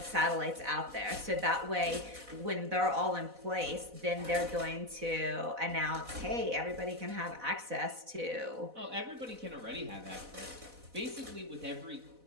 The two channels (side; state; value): left; late; 4.0 ms